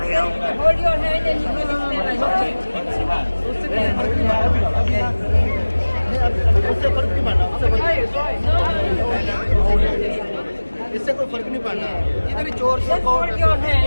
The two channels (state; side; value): inverted; both; correlation -1.00